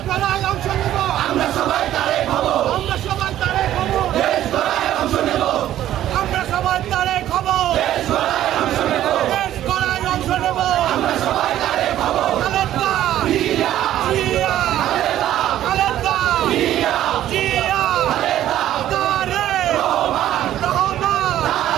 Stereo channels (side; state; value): left; quieter; 12.5 dB